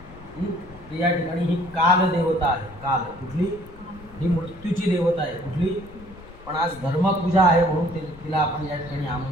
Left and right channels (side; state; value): left; noise; rumble, 20 dB below the sound